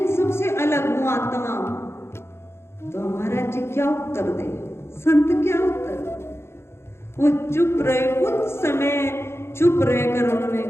सबसे अलग हूं, आत्मा हूं। तो हमारा जी क्या उत्तर दे, संत क्या उत्तर? वो चुप रहे, कुछ समय चुप रहकर उन्होंने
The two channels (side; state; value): right; late; 0.12 ms